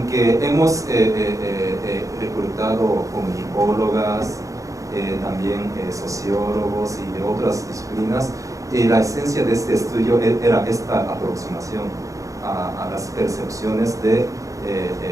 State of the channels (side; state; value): left; late; 0.16 ms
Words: hemos reclutado comunicólogas, también sociólogos y de otras disciplinas, la esencia de este estudio era esta aproximación a las percepciones de